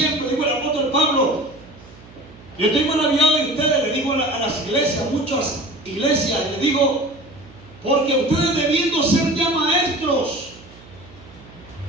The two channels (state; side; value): noise; right; hum, 22 dB below the sound